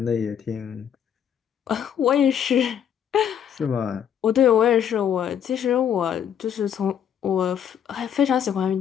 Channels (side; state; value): right; quieter; 8.9 dB